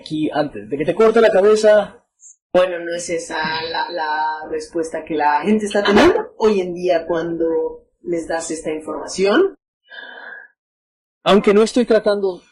antes de que te corte la cabeza. Bueno, no es esa la respuesta que la gente está teniendo hoy en día cuando les das esta información. Aunque no estoy tratando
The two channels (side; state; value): both; identical; correlation 1.00